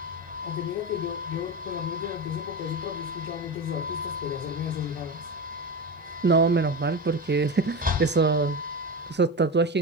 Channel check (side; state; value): both; normal; correlation 0.22